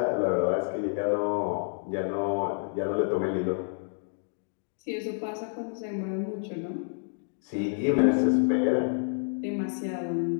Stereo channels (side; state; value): right; silent; digital silence